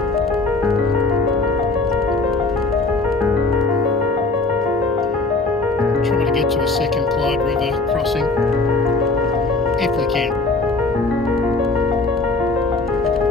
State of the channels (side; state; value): right; quieter; 3.4 dB